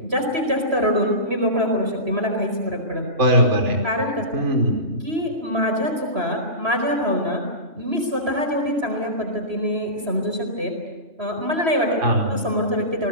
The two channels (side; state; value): left; late; 3.0 ms